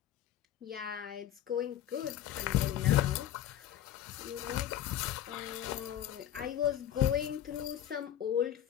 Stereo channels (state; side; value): quieter; right; 11.3 dB